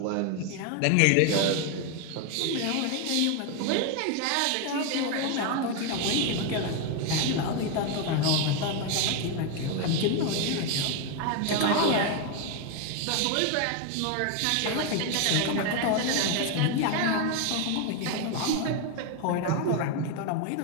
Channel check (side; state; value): both; different; correlation 0.01